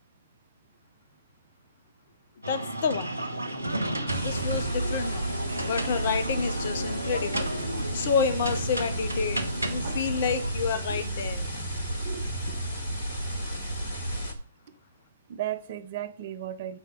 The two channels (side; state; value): both; inverted; correlation -0.62